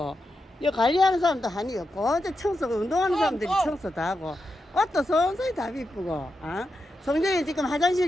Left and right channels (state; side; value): normal; both; correlation 0.87